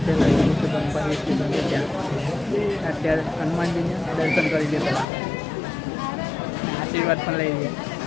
પહેલાં કીધું કે બનભા હિલ સ્ટેશન છે ત્યાં. અત્યારે હનુમાનજીને દર્શન કરી દેતા, આશીર્વાદ પણ લઈ લઈએ.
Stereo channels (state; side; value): drops out; right; at 5.1 s